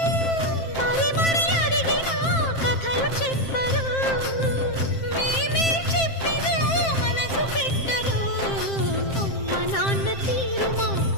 మరి మరి అడిగినా కథలు చెప్పరు, మేమే చెప్పినా మనసు పెట్టరు. అమ్మ నాన్న తీరు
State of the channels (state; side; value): late; right; 7.6 ms